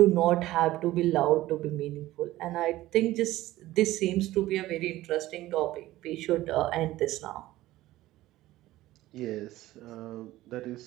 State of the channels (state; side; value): quieter; left; 16.3 dB